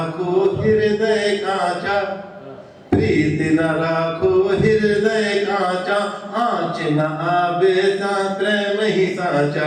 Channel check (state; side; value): identical; both; correlation 1.00